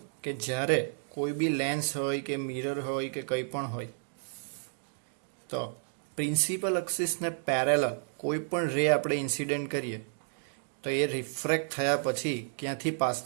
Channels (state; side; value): silent; left; digital silence